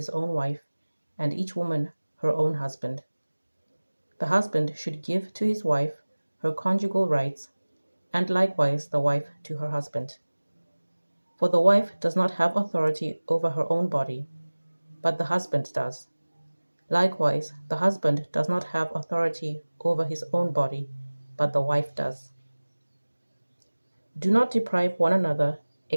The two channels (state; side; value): inverted; both; correlation -1.00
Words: own wife, and each woman her own husband. The husband should give to his wife her conjugal rights, and likewise the wife to her husband. For the wife does not have authority over her own body, but the husband does. Likewise, the husband does not have authority over his own body, but the wife does. Do not deprive one another,